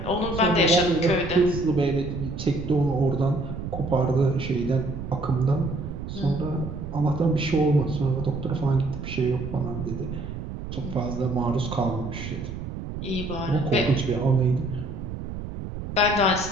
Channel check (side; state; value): right; noise; rumble, 7 dB below the sound